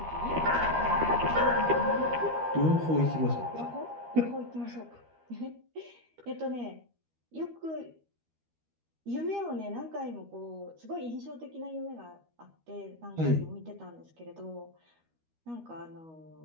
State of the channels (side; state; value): left; late; 13 ms